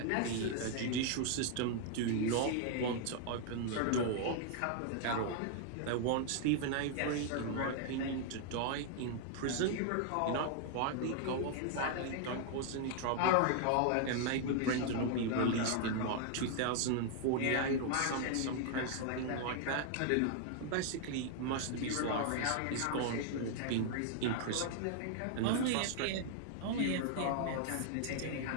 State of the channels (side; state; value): both; different; correlation 0.00